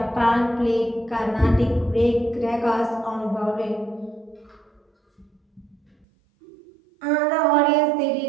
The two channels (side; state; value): left; drops out; at 6.1 s